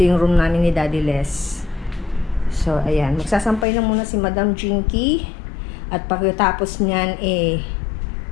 yung room namin ni Daddy Les. So ayan, magsasampay na muna si Madam Jinky. At pagkatapos niyan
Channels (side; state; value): right; drops out; at 3.7 s